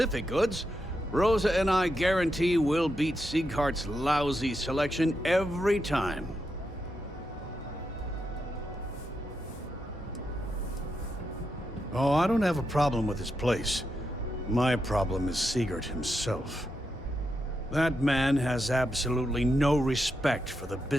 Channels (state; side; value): normal; both; correlation 0.85